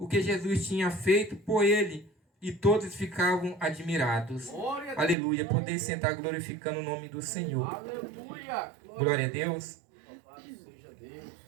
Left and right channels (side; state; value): left; drops out; at 5.2 s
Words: que Jesus tinha feito por ele, e todos ficavam admirados. Glória a Deus. Aleluia. Poder sentar glorificando o nome do Senhor. Aleluia. Glória a Deus. Louvado seja Deus.